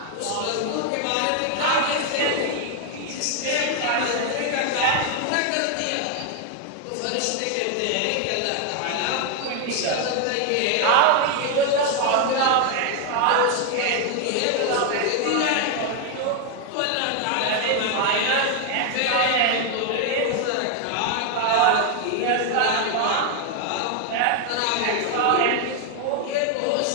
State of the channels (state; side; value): different; both; correlation 0.01